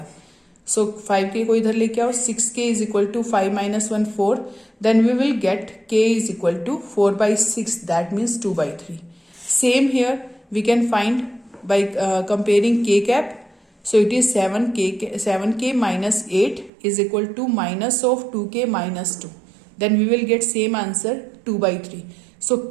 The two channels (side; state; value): left; drops out; at 16.7 s